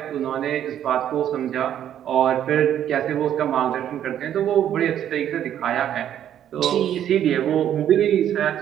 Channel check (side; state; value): left; quieter; 10.5 dB